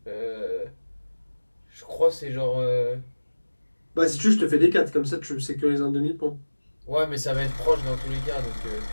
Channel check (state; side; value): inverted; both; correlation -1.00